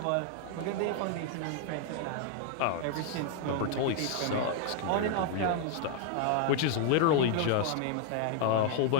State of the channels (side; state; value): both; different; correlation 0.00